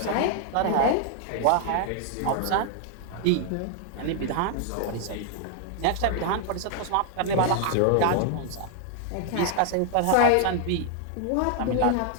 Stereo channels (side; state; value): both; different; correlation 0.00